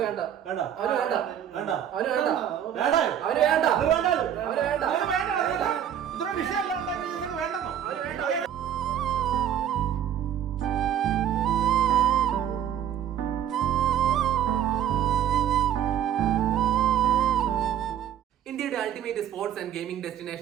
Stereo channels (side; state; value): left; quieter; 10.0 dB